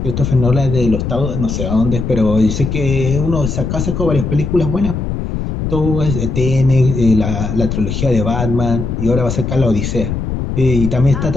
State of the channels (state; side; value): noise; left; rumble, 3 dB below the sound